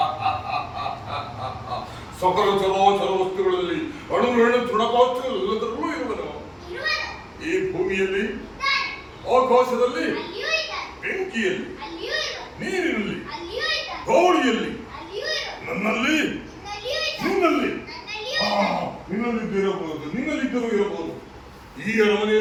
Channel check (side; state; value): both; identical; correlation 1.00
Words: ಸಕಲ ಚರಾಚರ ವಸ್ತುಗಳಲ್ಲಿ ಅಣು ರೇಣು ತೃಣಕಾಷ್ಟಗಳೆಲ್ಲದರಲ್ಲೂ ಇರುವನು. ಈ ಭೂಮಿಯಲ್ಲಿ, ಆಕಾಶದಲ್ಲಿ, ಬೆಂಕಿಯಲ್ಲಿ, ನೀರಿನಲ್ಲಿ, ಗಾಳಿಯಲ್ಲಿ, ನನ್ನಲ್ಲಿ, ನಿನ್ನಲ್ಲಿ, ನಿನ್ನಲ್ಲಿದ್ದಿರಬಹುದು, ನಿನ್ನಲ್ಲಿದ್ದರೂ ಇರಬಹುದು. ಈ